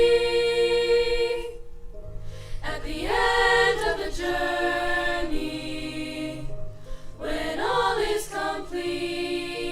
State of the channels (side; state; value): both; identical; correlation 1.00